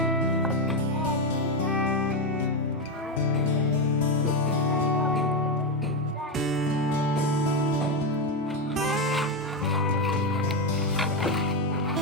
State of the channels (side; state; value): both; normal; correlation 0.09